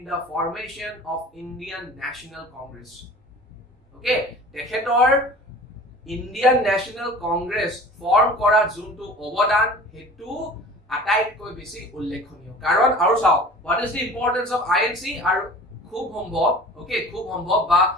the formation of Indian National Congress. Okay, তেখেতৰ Indian National Congress form কৰাত যোনটো অৱদান হেতু আটাইতকৈ বেছি উল্লেখনীয় কাৰণ আৰু চাও what is the importance of INC আৰু খুব সম্ভৱ okay খুব সম্ভৱ বা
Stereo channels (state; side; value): normal; both; correlation 0.42